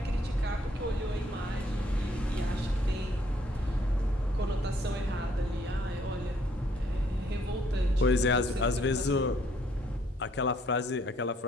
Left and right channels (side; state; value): both; normal; correlation 0.66